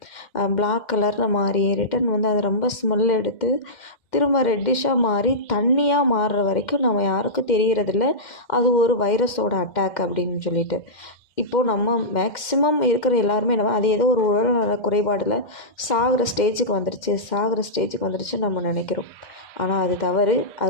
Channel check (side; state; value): right; late; 2.1 ms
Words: பிளாக் கலரில் மாறி ரிட்டன் வந்து அது ரொம்ப ஸ்மெல் எடுத்து திரும்ப ரெட்டிஷாக மாறி தண்ணியாக மாறுற வரைக்கும் நம்ம யாருக்கும் தெரியறதில்ல. அது ஒரு வைரஸோட அட்டாக் அப்படின்னு சொல்லிட்டு. இப்போது நம்ம மேக்ஸிமம் இருக்கிற எல்லாருமே என்ன அது ஏதோ ஒரு உடல்நல குறைபாடில் சாகிற ஸ்டேஜுக்கு வந்துருச்சுன்னு நம்ம நினைக்கிறோம். ஆனால் அது தவறு.